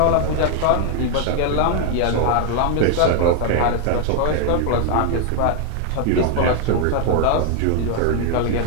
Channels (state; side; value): different; both; correlation 0.00